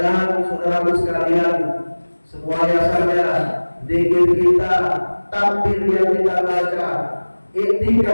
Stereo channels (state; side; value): inverted; both; correlation -1.00